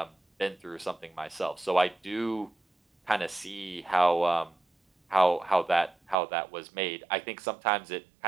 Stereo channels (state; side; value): drops out; left; at 6.2 s